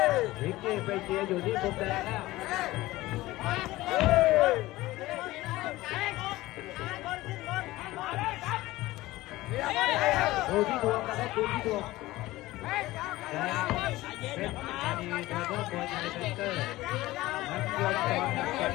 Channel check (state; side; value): quieter; right; 18.0 dB